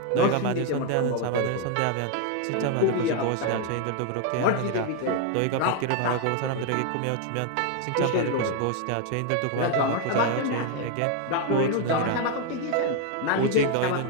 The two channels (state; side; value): different; both; correlation 0.01